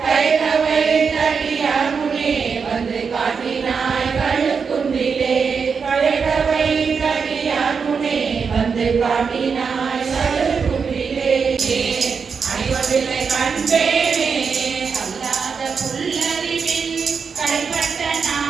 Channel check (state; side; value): quieter; left; 5.8 dB